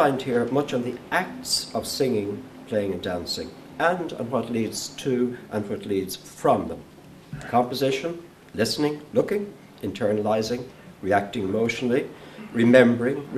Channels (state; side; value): identical; both; correlation 1.00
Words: here much on the acts of singing, playing and dancing, and on what leads to and what leads from them. Composition, listening, looking, internalizing, reacting emotionally, remembering,